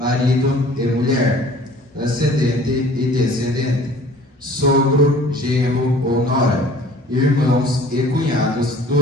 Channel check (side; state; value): both; normal; correlation 0.50